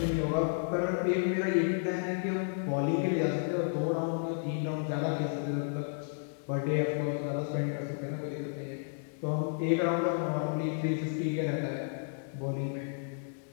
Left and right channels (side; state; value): right; silent; 56 dB below the other